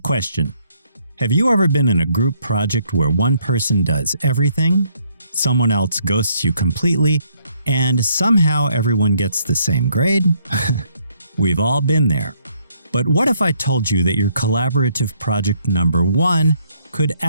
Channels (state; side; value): inverted; both; correlation -0.69